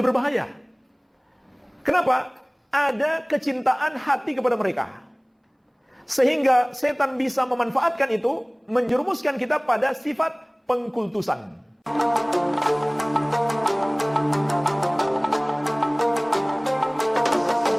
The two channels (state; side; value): identical; both; correlation 1.00